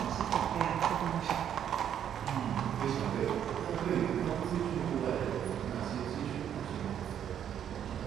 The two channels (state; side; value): quieter; left; 9.5 dB